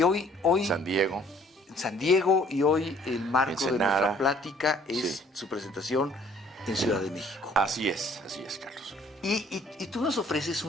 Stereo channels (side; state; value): both; normal; correlation 0.58